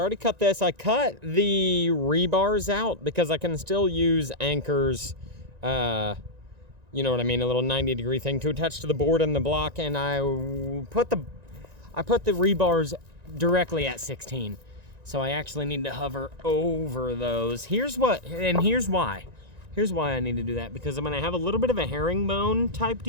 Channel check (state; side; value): late; left; 1.9 ms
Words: I already cut this. I cut the rebars out because I can still use anchors, you know what I mean, a little 90-degree thing to attach to the board and the block, and I put the rebars directly at 16. So I actually need to hover over those. Here's why. Here's why I need to do that, because I'm gonna have a little bit of a herringbone type